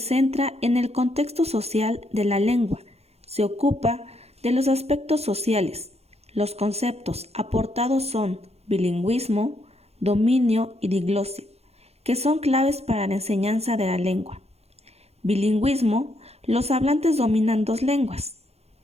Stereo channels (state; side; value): late; left; 0.30 ms